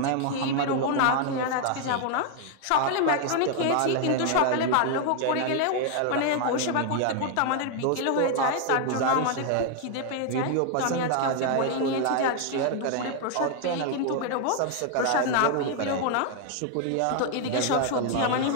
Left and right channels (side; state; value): both; different; correlation 0.00